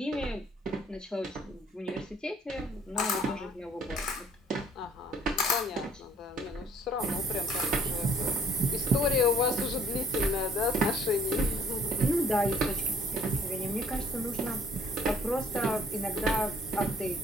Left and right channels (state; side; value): normal; both; correlation 0.59